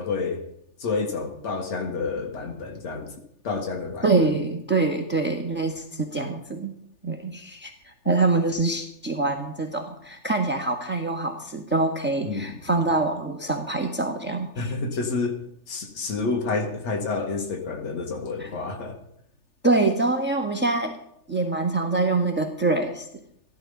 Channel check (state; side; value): late; right; 3.4 ms